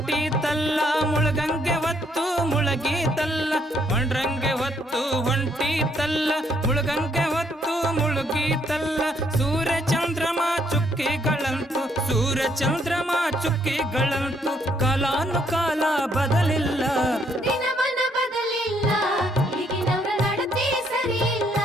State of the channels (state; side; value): normal; both; correlation 0.70